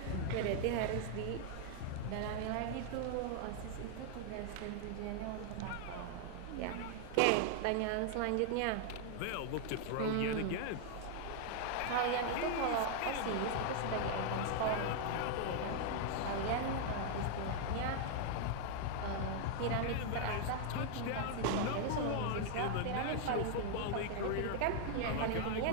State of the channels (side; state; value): both; different; correlation 0.00